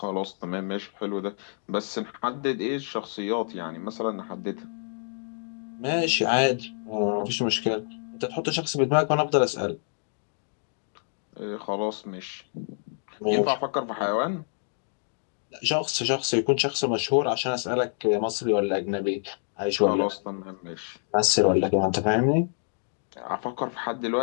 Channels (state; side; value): silent; right; digital silence